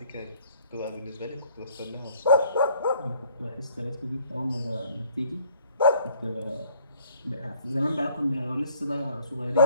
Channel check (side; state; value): both; inverted; correlation -0.60